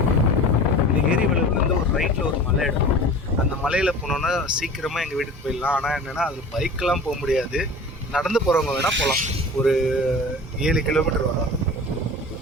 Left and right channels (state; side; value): normal; both; correlation 0.38